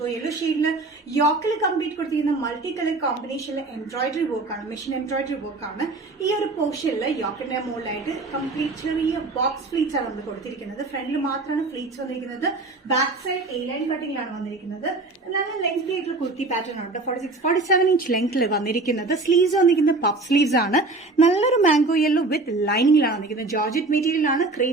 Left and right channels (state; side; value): quieter; left; 3.3 dB